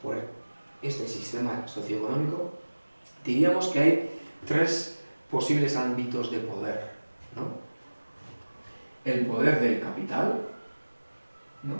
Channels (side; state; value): both; inverted; correlation -1.00